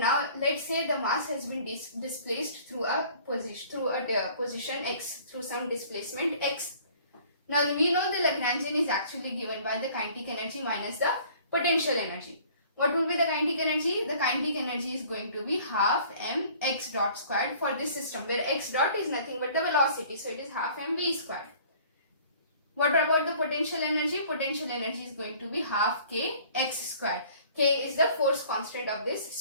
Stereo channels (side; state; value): both; inverted; correlation -0.52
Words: let's say the mass has been displaced through a position x, through some displacement x. Now we know the Lagrangian is actually given by the kinetic energy minus the potential energy. What will be the kinetic energy? The kinetic energy is going to be half m x dot squared for this system, where x dot is nothing but the velocity, so it is half m v squared. What about the potential energy? Potential energy is going to be half k x squared. K is the force constant of this